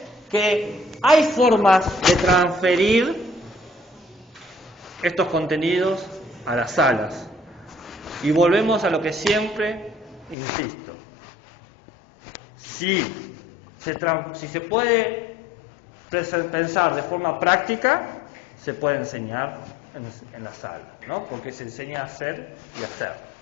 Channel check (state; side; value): drops out; right; at 10.4 s